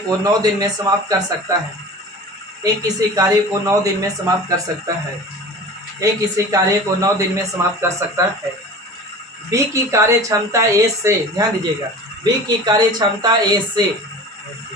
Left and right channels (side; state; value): both; normal; correlation 0.38